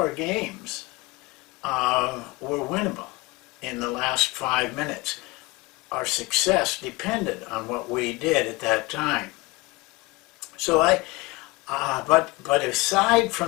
games were winnable in the last 5 minutes. Our success depended on what we did at that time. So but aside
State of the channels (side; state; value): right; quieter; 23.4 dB